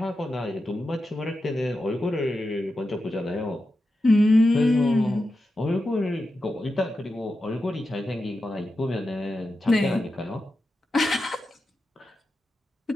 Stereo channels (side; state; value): both; normal; correlation 0.90